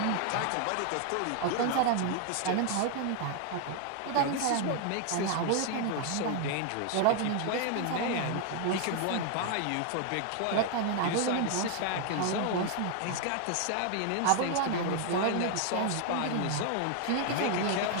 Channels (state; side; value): different; both; correlation 0.00